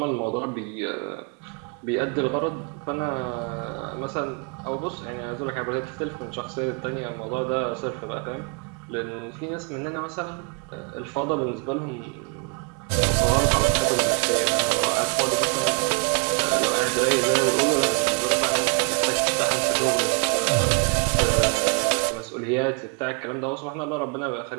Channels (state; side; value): quieter; left; 35.5 dB